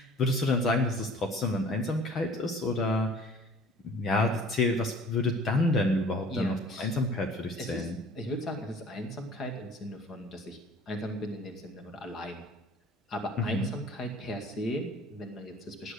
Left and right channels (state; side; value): normal; both; correlation 0.49